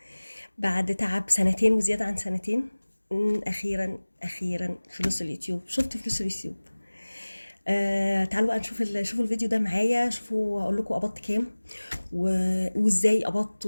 بعد تعب سنتين وزياده عن سنتين. اخيرا فلوس اليوتيوب، شفت فلوس اليوتيوب. تعالوا بقى نشوف شوفوا الفيديو ده معايا، شوفوا اقول لكم قبضت كام وازاي قبضت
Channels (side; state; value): both; inverted; correlation -1.00